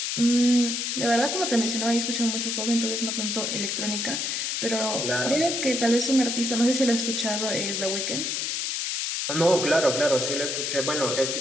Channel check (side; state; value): left; noise; hiss, 1 dB below the sound